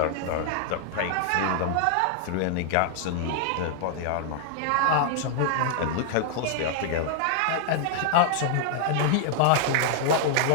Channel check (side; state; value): both; different; correlation 0.00